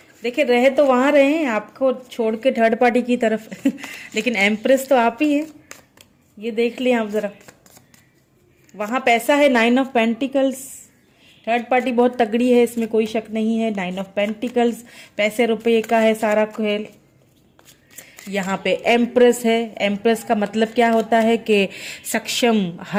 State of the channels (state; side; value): identical; both; correlation 1.00